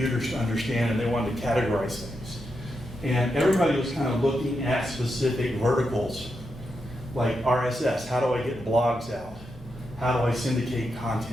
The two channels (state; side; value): normal; both; correlation 0.85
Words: to understand, and they wanted to categorize things. And everybody was kind of looking at specific verticals, like RSS. How do I get blogs out? How do I syndicate